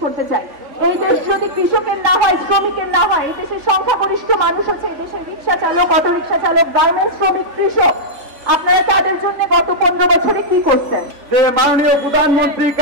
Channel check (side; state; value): left; late; 3.5 ms